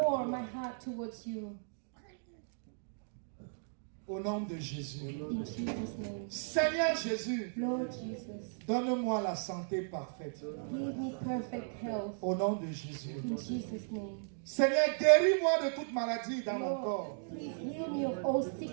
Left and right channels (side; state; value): left; silent; digital silence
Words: my heart towards you. Au nom de Jésus. In Jesus' name. Seigneur Jésus, Lord Jesus, donne-moi la santé parfaite. give me perfect health. Au nom de Jésus. In Jesus' name. Seigneur, guéris-moi de toute maladie dans mon corps. Lord, please heal me of all